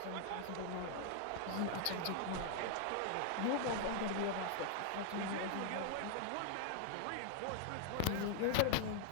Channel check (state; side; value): different; both; correlation 0.00